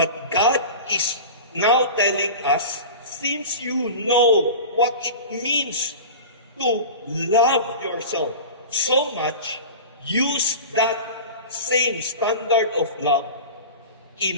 God is now telling us, since you know what it means to love yourself so much, use that same standard of love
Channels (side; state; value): both; inverted; correlation -0.32